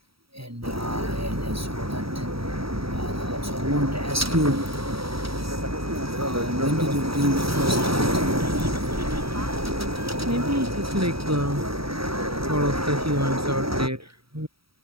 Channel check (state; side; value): late; left; 0.76 ms